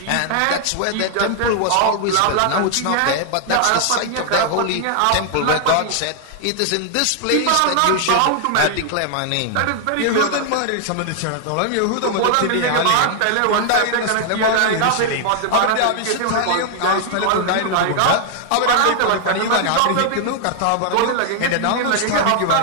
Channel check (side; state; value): both; different; correlation 0.00